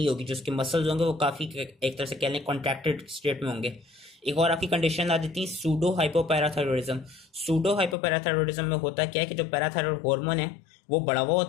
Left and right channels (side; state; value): right; drops out; at 8.0 s